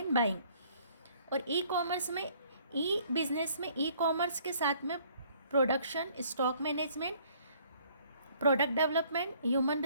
बाइंग, और e-commerce में, e-business में e-commerce के साथ में production, stock management, product development, human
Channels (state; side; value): inverted; both; correlation -0.60